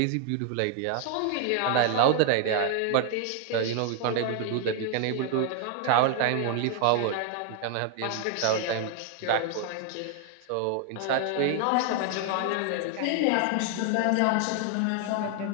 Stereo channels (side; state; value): both; different; correlation 0.00